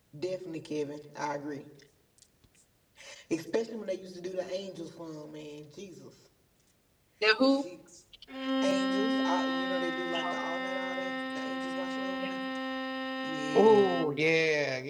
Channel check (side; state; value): both; identical; correlation 1.00